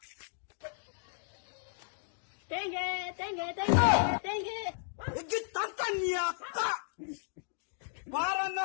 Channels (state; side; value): silent; right; digital silence